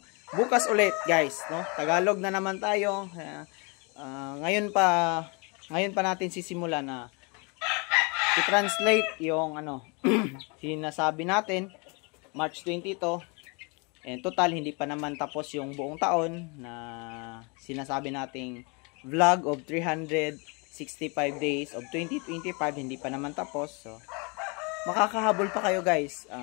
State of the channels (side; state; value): right; quieter; 31.3 dB